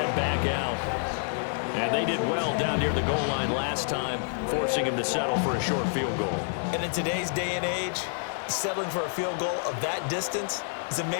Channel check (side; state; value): right; silent; digital silence